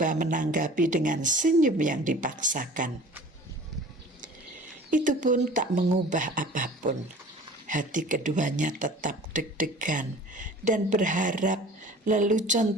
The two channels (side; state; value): both; normal; correlation 0.44